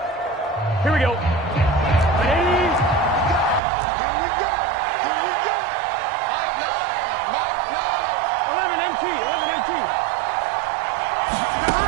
Here we go.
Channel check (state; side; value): drops out; left; at 3.6 s